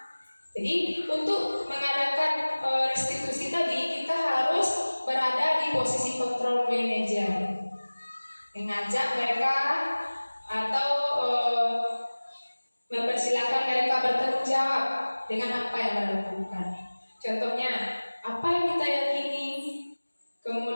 Jadi untuk mengadakan restitusi tadi, kita harus berada di posisi kontrol manajer, mengajak mereka atau mempersilahkan mereka bertanggung jawab dengan apa yang mereka lakukan. Contohnya, apa yang kita yakini,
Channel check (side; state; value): both; inverted; correlation -1.00